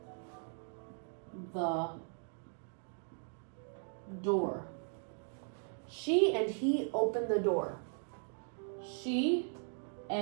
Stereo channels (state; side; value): silent; left; 52 dB below the other